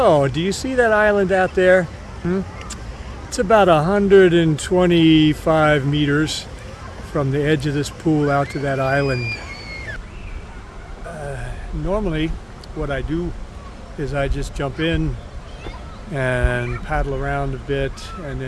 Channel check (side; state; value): both; identical; correlation 1.00